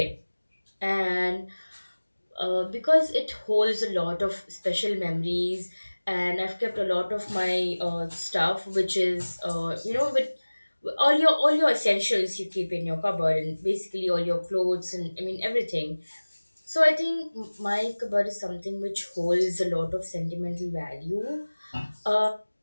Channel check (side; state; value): both; inverted; correlation -1.00